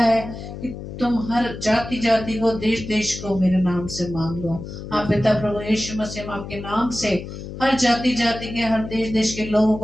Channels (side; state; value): left; noise; hum, 10 dB below the sound